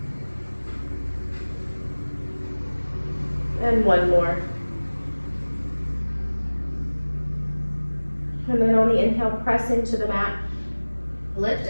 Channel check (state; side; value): inverted; both; correlation -1.00